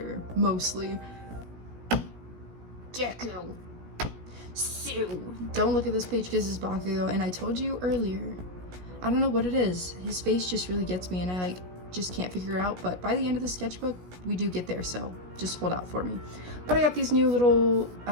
mostly. Deku. Sue. Don't look at this page because it's Bakugo, and I told you earlier, I don't know what it is. His face just really gets me, and I just can't figure it out, but by the end of the sketchbook, we do get there, so just hold out for me. But I got these new little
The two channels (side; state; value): left; late; 17 ms